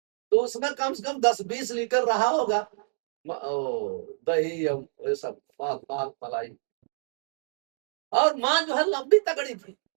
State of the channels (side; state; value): left; silent; digital silence